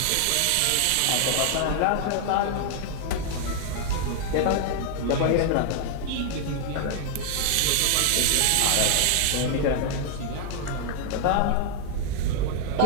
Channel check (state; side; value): different; both; correlation 0.00